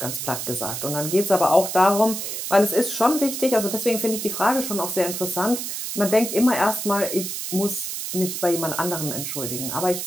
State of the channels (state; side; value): noise; right; hiss, 5 dB below the sound